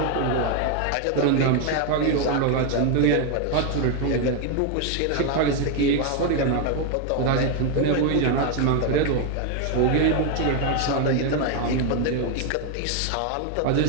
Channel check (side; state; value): both; different; correlation 0.01